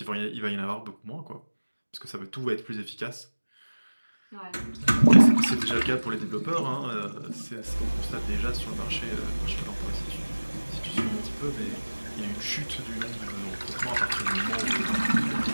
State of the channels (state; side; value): inverted; both; correlation -1.00